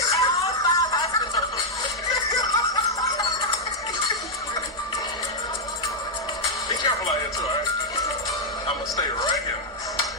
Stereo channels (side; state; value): both; normal; correlation -0.04